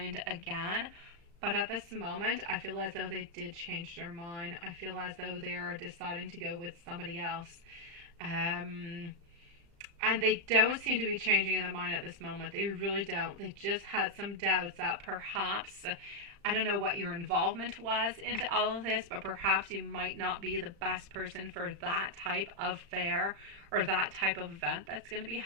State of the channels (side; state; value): left; late; 35 ms